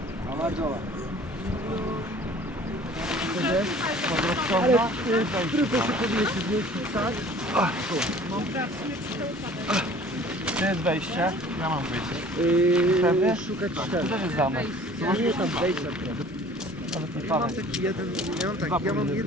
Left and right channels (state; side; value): normal; both; correlation 0.49